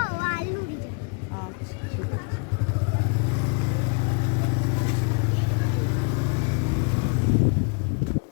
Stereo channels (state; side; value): quieter; right; 37.1 dB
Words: আলুরি যায়। আচ্ছা ঠিক আছে।